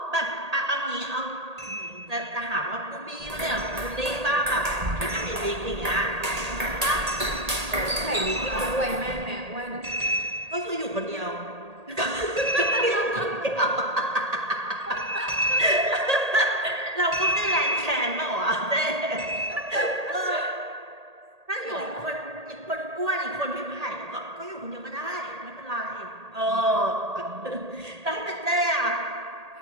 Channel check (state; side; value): late; left; 1.8 ms